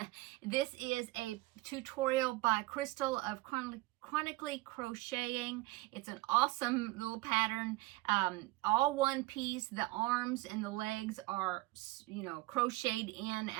This is a tutorial by Crystal of Chronically Crocheting. It's an awesome little pattern, all one piece. The arms and the legs are, crocheted in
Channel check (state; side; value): quieter; left; 20.4 dB